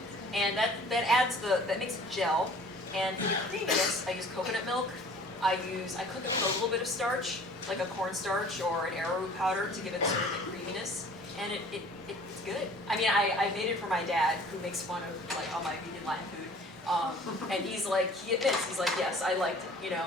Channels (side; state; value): both; normal; correlation 0.49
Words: and that makes it gel. And for the creaminess, I use coconut milk. I cook it with a little bit of starch, like a cornstarch or an arrowroot powder, to give it sort of the creaminess. And it's good. I made it for my dad, who makes fun of like all my vegan Latin food. And he admits, yes, I liked it.